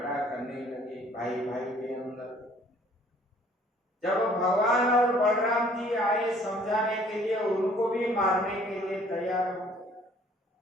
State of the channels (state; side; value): normal; both; correlation 0.57